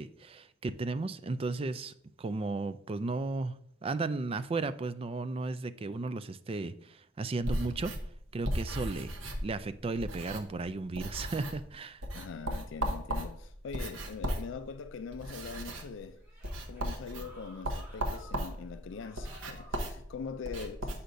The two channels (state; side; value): normal; both; correlation 0.59